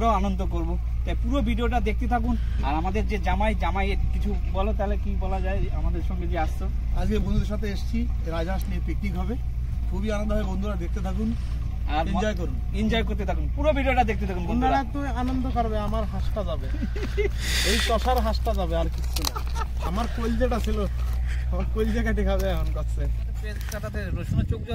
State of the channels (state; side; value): identical; both; correlation 1.00